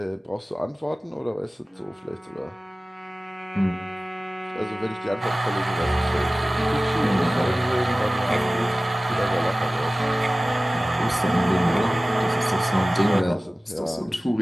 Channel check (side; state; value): both; normal; correlation 0.97